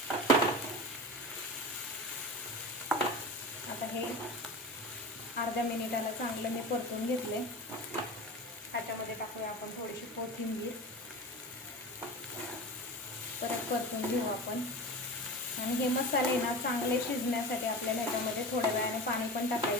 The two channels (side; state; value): both; normal; correlation 0.29